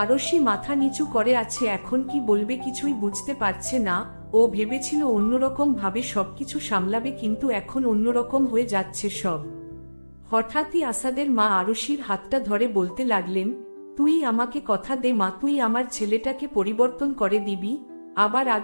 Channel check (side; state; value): both; inverted; correlation -1.00